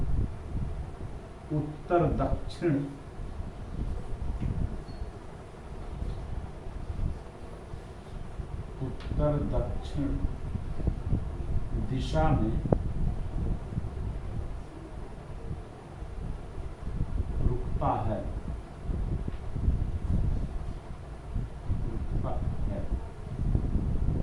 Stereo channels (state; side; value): identical; both; correlation 1.00